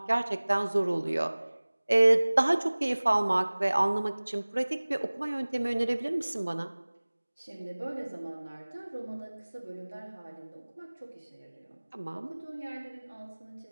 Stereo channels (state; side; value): inverted; both; correlation -1.00